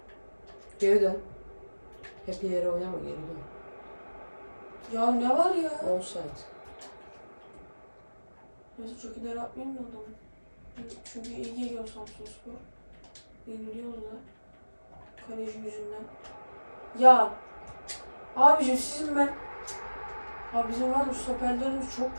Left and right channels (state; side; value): inverted; both; correlation -1.00